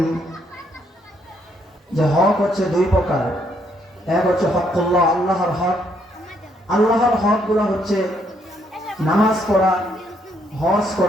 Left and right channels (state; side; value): normal; both; correlation 0.72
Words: যে হক হচ্ছে দুই প্রকার। এক হচ্ছে হকুল্লাহ, আল্লাহর হক। আল্লাহর হক গুলো হচ্ছে নামাজ পড়া, হজ